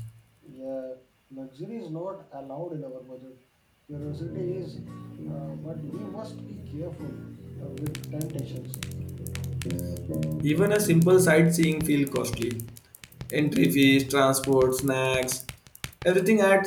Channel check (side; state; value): both; identical; correlation 1.00